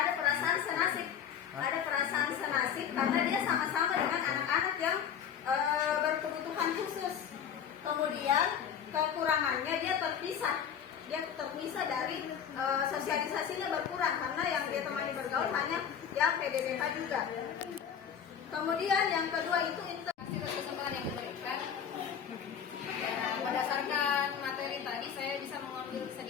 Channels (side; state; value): right; quieter; 8.2 dB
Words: perasaan senasib, karena dia sama-sama dengan anak-anak yang berkebutuhan khusus. Kemudian kekurangannya dia terpisah dari sosialisasinya berkurang, karena yang dia temani bergaul hanya yang PDBK juga. Kemudian yang kedua itu Hasil kesempatan yang diberikan. Berdasarkan materi tadi, saya bisa mengambil